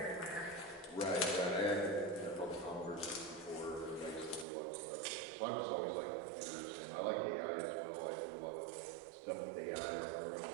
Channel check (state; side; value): drops out; left; at 4.5 s